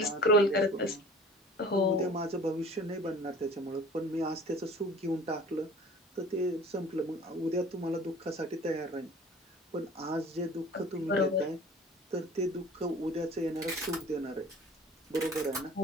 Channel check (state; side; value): normal; both; correlation 0.45